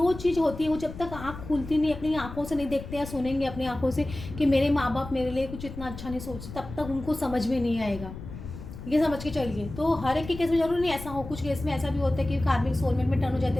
चीज़ होती है, वो जब तक आँख खुलती नहीं, अपनी आँखों से नहीं देखते या सुनेंगे अपनी आँखों से कि मेरे माँ बाप मेरे लिए कुछ इतना अच्छा नहीं सोचते, तब तक उनको समझ में नहीं आएगा। ये समझ के चलिए। तो हर एक के केस में जरूर नहीं ऐसा हो, कुछ केस में ऐसा भी होता है कि कार्मिक सोलमेट में टर्न हो जाते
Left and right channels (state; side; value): noise; left; rumble, 12 dB below the sound